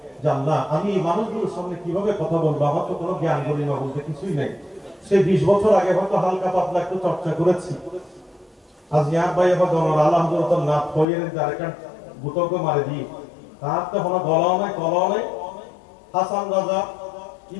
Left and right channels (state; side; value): drops out; right; at 11.1 s